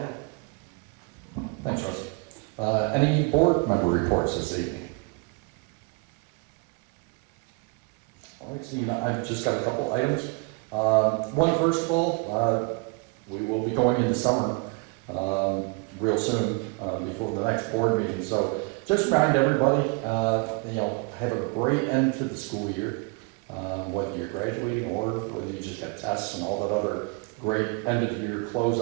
Thanks, Russ. Any board member reports this evening? All right, Steve, I've just got a couple items. One, first of all, we will be going into summer real soon before the next board meeting. So just remind everybody, have a great end to the school year, whether you're graduating or whether you just got tests and all that other great end of year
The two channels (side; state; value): left; quieter; 30.1 dB